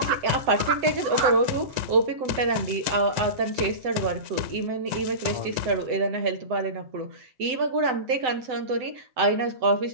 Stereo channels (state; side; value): late; left; 7.9 ms